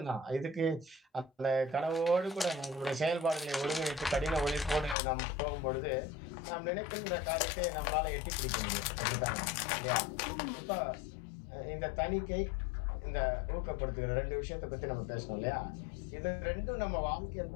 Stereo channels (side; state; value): right; drops out; at 5.0 s